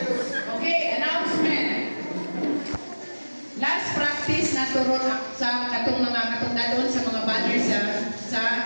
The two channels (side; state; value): both; inverted; correlation -1.00